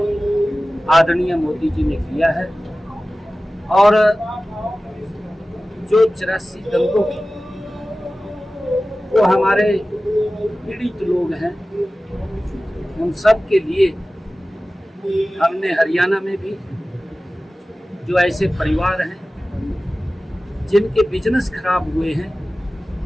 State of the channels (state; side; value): normal; both; correlation 0.96